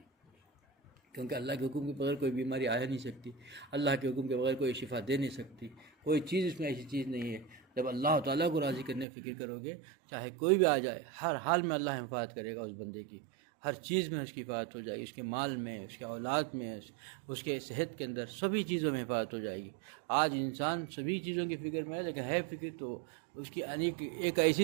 کیونکہ اللہ کے حکم کے بغیر کوئی بیماری آ نہیں سکتی، اللہ کے حکم کے بغیر کوئی شفا دے نہیں سکتی، کوئی چیز اس میں ایسی چیز نہیں ہے۔ جب اللہ تعالیٰ کو راضی کرنے کی فکر کرو گے، چاہے کوئی بھی آ جائے، ہر حال میں اللہ حفاظت کرے گا اس بندے کی، ہر چیز میں اس کی حفاظت ہو جائے گی، اس کے مال میں، اس کے اولاد میں، اس کے صحت کے اندر، سبھی چیزوں میں حفاظت ہو جائے گی۔ آج انسان سبھی چیزوں کی فکر میں ہے، لیکن ہے فکر تو اس کی ایک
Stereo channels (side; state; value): left; drops out; at 9.1 s